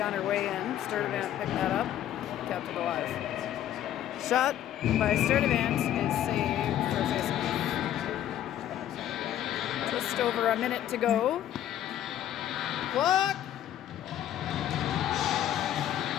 on her way in. Sturdivant picked that up. kept it alive. Shot by Sturdivant is saved for a face-off. Just over a minute to go. Block!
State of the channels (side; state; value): right; quieter; 11.6 dB